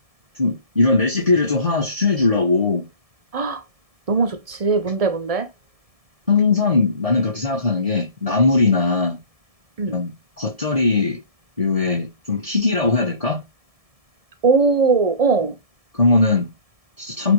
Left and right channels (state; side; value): late; left; 1.7 ms